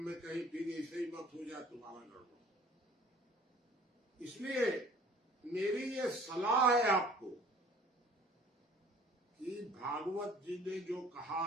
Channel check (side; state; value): both; normal; correlation 0.51